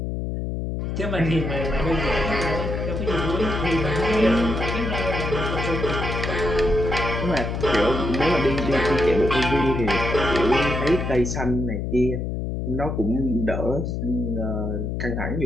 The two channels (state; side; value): noise; left; hum, 3 dB below the sound